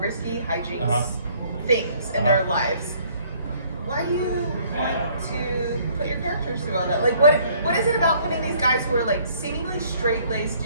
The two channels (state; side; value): inverted; both; correlation -0.61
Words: hijinks things in their lives. Why do you want to put your characters through all that? Like, what is it about putting these guys who are like seemingly straight-laced